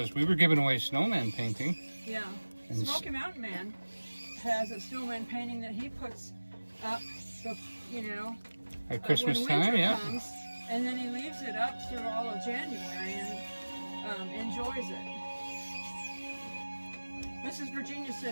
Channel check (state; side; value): inverted; both; correlation -1.00